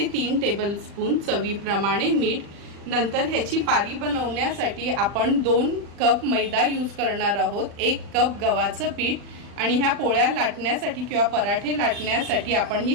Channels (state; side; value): late; left; 40 ms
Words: 3 टेबलस्पून, चवीप्रमाणे मीठ। नंतर ह्याची पारी बनवण्यासाठी आपण 2 कप मैदा यूज करणार आहोत, 1 कप गव्हाचं पीठ आणि ह्या पोळ्या लाटण्यासाठी किंवा पराठे लाटण्यासाठी आपण ही